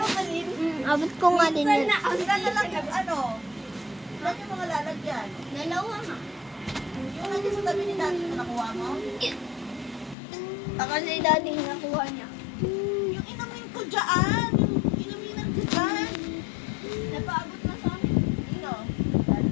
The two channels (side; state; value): right; drops out; at 10.2 s